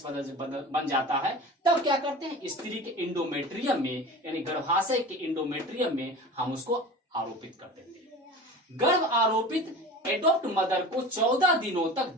बन जाता है, तब क्या करते हैं, स्त्री के इंडोमेट्रियम में यानी गर्भाशय के इंडोमेट्रियम में हम उसको आरोपित कर देते हैं। गर्भ आरोपित एडॉप्ट मदर को 14 दिनों तक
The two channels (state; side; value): normal; both; correlation 0.35